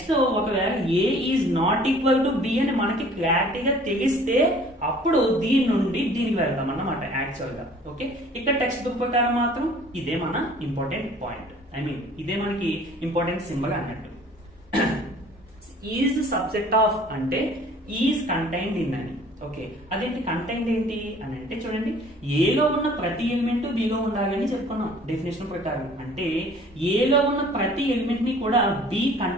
ఒకవేళ A is not equal to B అని మనకి క్లారిటీగా తెలిస్తే అప్పుడు దీని నుండి దీనికి వెళ్తాం అన్నమాట యాక్చువల్ గా. ఓకే, ఇక్కడ టెక్స్ట్ బుక్ ప్రకారం మాత్రం ఇదే మన ఇంపార్టెంట్ పాయింట్. ఇదే మనకి ఇంపార్టెంట్ సింబల్ అన్నట్టు. ఈజ్ సబ్సెట్ ఆఫ్ అంటే ఈజ్ కంటైన్డ్ ఇన్ అని. ఓకే, అదేంటి కంటైన్డ్ ఏంటి అని అంటే చూడండి, ఏలో ఉన్న ప్రతి ఎలిమెంట్ బిలో ఉండాలి అని చెప్పుకున్నాం డెఫినేషన్ ప్రకారం. అంటే ఏలో ఉన్న ప్రతి ఎలిమెంట్ ని కూడా బి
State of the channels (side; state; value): both; normal; correlation 0.52